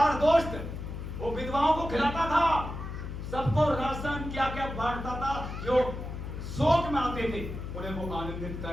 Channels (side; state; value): left; noise; hum, 7 dB below the sound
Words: दोस्त, वो विधवाओं को खिलाता था, सबको राशन क्या क्या बांटता था, जो शोक में आते थे उन्हें वो आनंदित